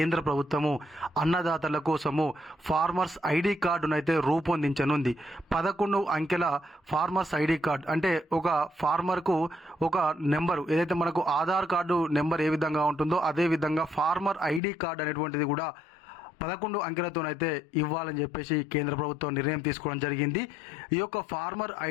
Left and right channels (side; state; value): right; drops out; at 14.6 s